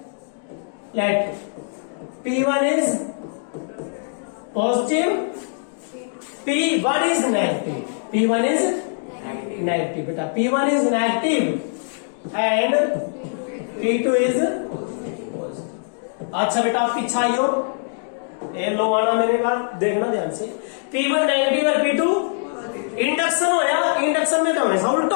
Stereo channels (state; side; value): silent; right; digital silence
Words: P1 is positive, P1 is negative, P1 is negative बेटा, P1 is negative and P2 is positive. अच्छा बेटा आप पीछे आइयो, ये लो आना मेरे पास, देखना ध्यान से। P1 नेगेटिव और P2 इंडक्शन हो या इंडक्शन में क्या होने उल्टा